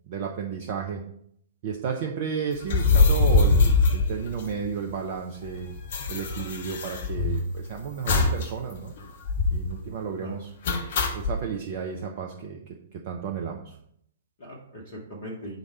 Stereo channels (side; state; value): both; inverted; correlation -0.39